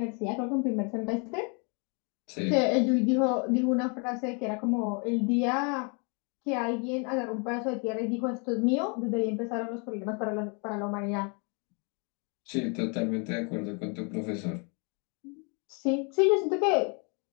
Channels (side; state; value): right; quieter; 35.5 dB